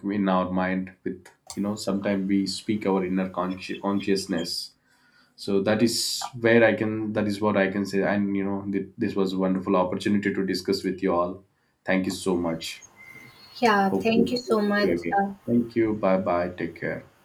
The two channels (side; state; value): both; identical; correlation 1.00